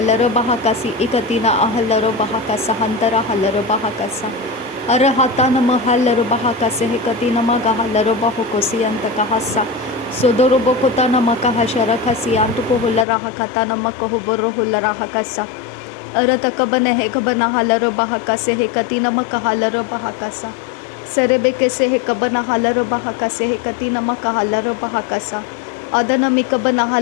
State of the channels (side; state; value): right; drops out; at 13.1 s